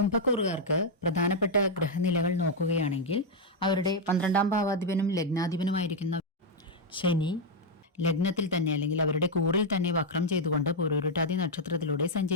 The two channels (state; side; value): normal; both; correlation -0.01